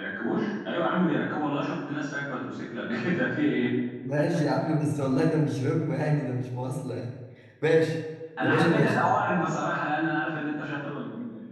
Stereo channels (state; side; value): identical; both; correlation 1.00